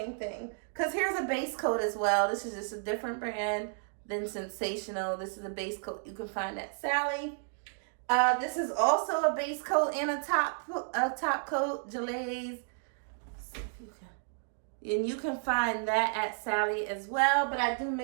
thing. Because here's a base coat as well. This is just a different brand than Sensational. This is a base coat you can find at Sally. This is also a base coat and a top coat, Gillette's. Let's see if you can. And you can find that at Sally as well, but I do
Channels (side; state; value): left; silent; digital silence